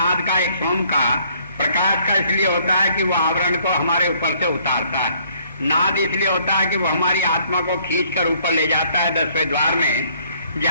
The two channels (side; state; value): both; inverted; correlation -0.64